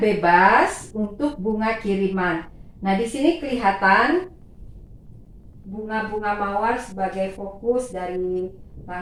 bebas untuk bunga kiriman. Nah, di sini kelihatan bunga-bunga mawar sebagai fokus dari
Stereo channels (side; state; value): both; identical; correlation 1.00